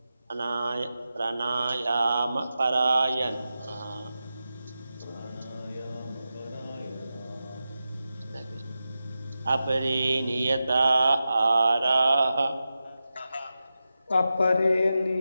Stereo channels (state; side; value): inverted; both; correlation -0.92